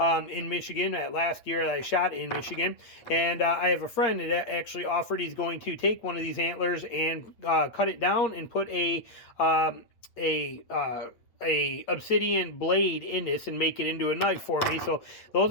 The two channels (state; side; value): late; right; 8.5 ms